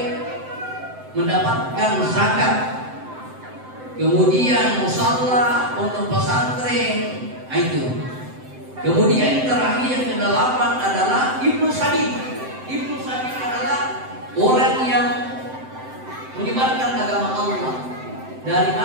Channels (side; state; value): left; late; 7.8 ms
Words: mendapatkan zakat. Kemudian musalla, pondok pesantren, itu. Kemudian terakhir yang ke-8 adalah Ibnu Sabil. Ibnu Sabil adalah orang yang menyebarkan agama Allah dari